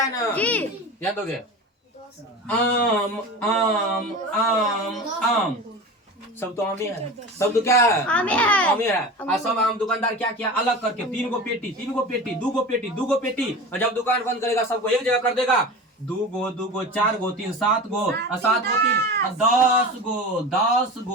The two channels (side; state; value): both; normal; correlation 0.31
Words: ना याद दोगे आम आम आम आम सब तो आम ही है, सब तो क्या है आम ही है। और सब आम दुकानदार क्या किया अलग करके 3 गो पेटी 2 गो पेटी और जब दुकान बंद करेगा सबको एक जगह कर देगा 2 गो 4 गो 3 7 गो और 7 गो 3 10